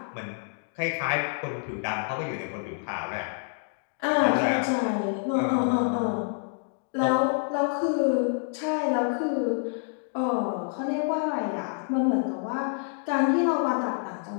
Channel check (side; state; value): right; silent; 60 dB below the other